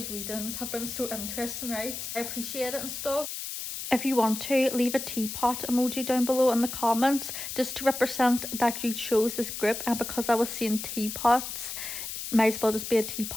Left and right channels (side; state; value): left; noise; hiss, 6 dB below the sound